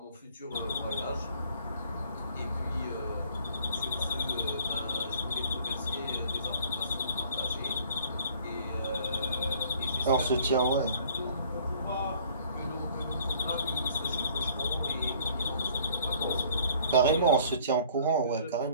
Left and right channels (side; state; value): both; inverted; correlation -0.54